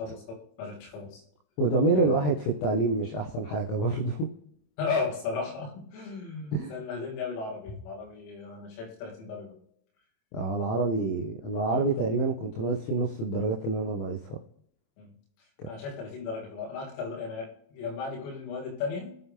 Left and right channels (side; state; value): right; late; 27 ms